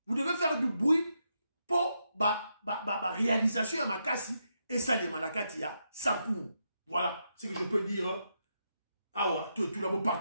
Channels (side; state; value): both; inverted; correlation -0.82